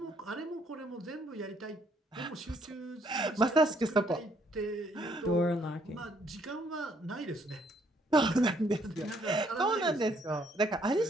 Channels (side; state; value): both; normal; correlation 0.67